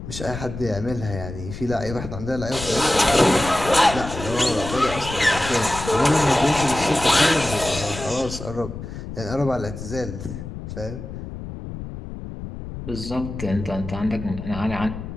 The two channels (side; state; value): left; noise; rumble, 9 dB below the sound